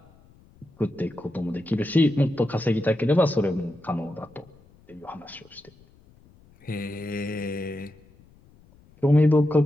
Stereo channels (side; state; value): left; noise; rumble, 28 dB below the sound